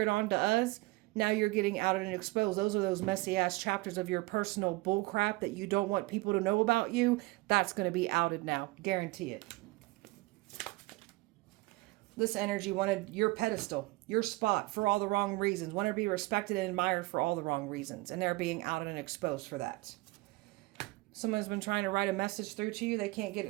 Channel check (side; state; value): left; quieter; 21.8 dB